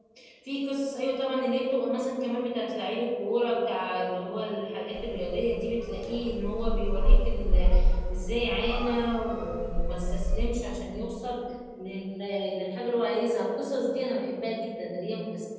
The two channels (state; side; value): identical; both; correlation 1.00